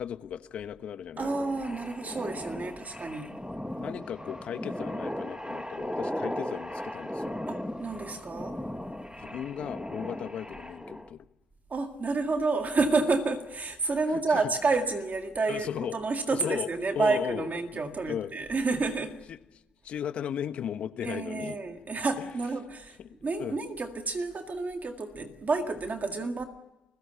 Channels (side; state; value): both; normal; correlation 0.76